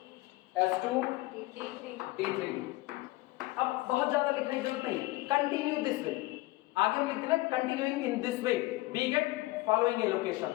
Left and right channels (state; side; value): quieter; right; 20.1 dB